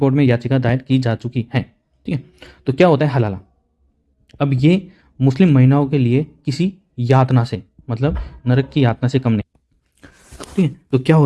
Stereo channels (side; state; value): both; identical; correlation 1.00